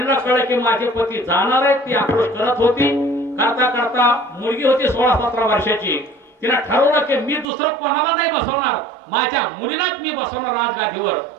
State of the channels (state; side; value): drops out; left; at 7.5 s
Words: कळलं की माझे पती जाणार आहेत. ती आक्रोश करत होती. करता करता मुलगी होती 16-17 वर्षाची. तिला ठरवलं की मी दुसरं कोणाला नाही बसवणार, माझ्या मुलीलाच मी बसवणार राजगादीवर.